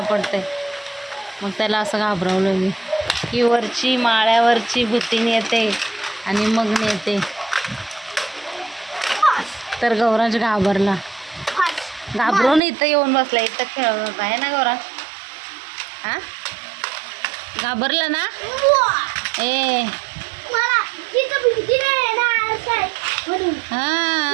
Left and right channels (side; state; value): left; drops out; at 12.6 s